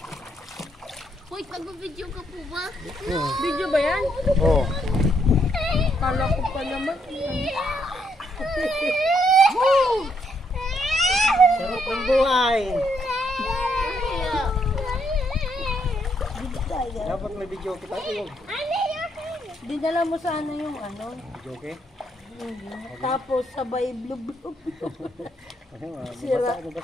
Hoy, nag-video ka po ba? Oo. Video ba yan? Oh. Kala ko pa naman. Sarap ng buhay. Dapat may video kita. Dinala mo sana yung ano. Video okay? Tapos sabay blub-blub. Sira.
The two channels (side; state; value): both; normal; correlation 0.74